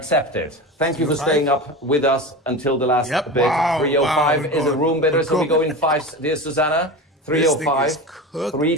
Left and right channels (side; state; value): both; normal; correlation 0.27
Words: it. Thank you for 305? staying up with us until the last Yep. bit. Wow, 305 wow, is a room bidder, so we go in five. Dear Susanna, This thing 305, is cooked